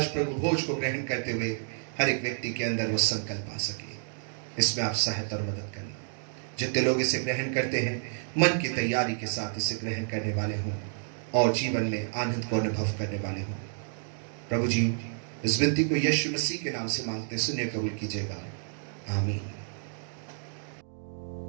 प्रभु भोज को ग्रहण करते हुए हर एक व्यक्ति के अंदर वो संकल्प आ सके, इसमें आप सहायता और मदद करना। जितने लोग इसे ग्रहण करते हैं मन की तैयारी के साथ इसे ग्रहण करने वाले हों और जीवन में आनंद को अनुभव करने वाले हों। प्रभु जी, इस विनती को यीशु मसीह के नाम से मांगते सुनिए, कबूल कीजिएगा। आमीन।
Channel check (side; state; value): left; silent; digital silence